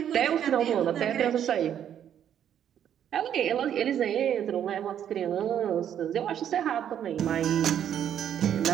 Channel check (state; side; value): quieter; left; 9.7 dB